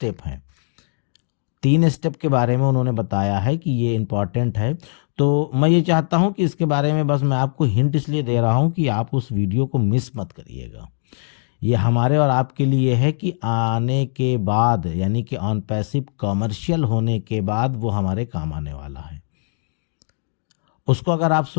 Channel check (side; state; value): right; silent; digital silence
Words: हैं। 3 स्टेप के बारे में उन्होंने बताया है कि ये इम्पॉर्टेंट है। तो मैं ये चाहता हूँ कि इसके बारे में बस मैं आपको हिंट इसलिए दे रहा हूँ कि आप उस वीडियो को मिस मत करिएगा। ये हमारे और आपके लिए है कि आने के बाद, यानी कि ऑन पैसिव कॉमर्शियल होने के बाद वो हमारे काम आने वाला है। उसको अगर आप